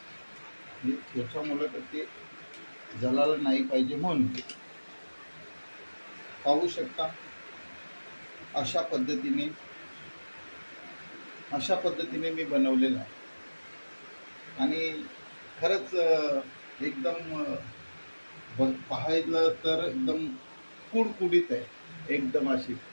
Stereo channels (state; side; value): inverted; both; correlation -1.00